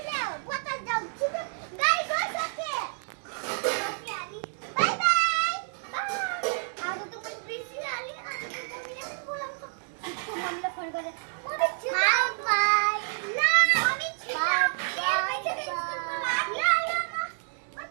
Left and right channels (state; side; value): silent; left; 59 dB below the other